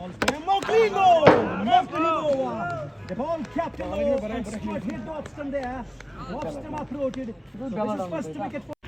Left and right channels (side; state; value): both; identical; correlation 1.00